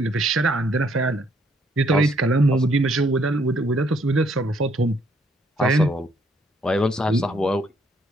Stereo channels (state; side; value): normal; both; correlation 0.68